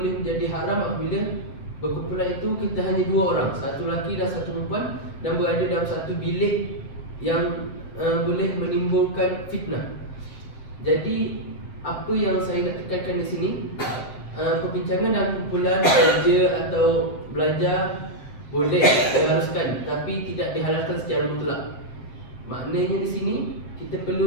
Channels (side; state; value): right; late; 7.7 ms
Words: menjadi haram apabila berkumpulan itu kita hanya dua orang, satu lelaki dan satu perempuan, dan berada dalam satu bilik yang boleh menimbulkan fitnah. Jadi apa yang saya nak tekankan di sini, perbincangan dalam kumpulan kerja atau belajar boleh diharuskan, tapi tidak dihalalkan secara mutlak. Maknanya di sini kita